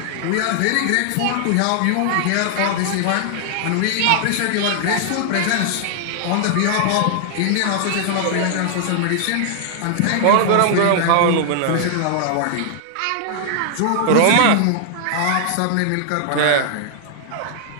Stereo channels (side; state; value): both; different; correlation -0.01